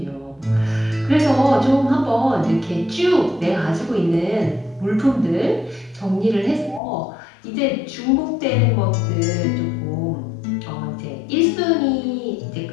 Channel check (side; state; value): right; drops out; at 6.8 s